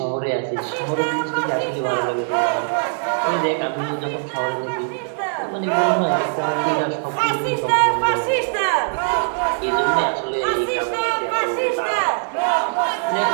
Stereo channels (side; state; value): left; silent; 65 dB below the other